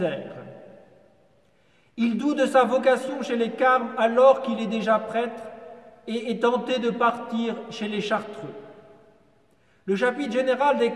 Il doute de sa vocation chez les Carmes alors qu'il est déjà prêtre et est tenté de partir chez les Chartreux. Le chapitre général des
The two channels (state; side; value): identical; both; correlation 1.00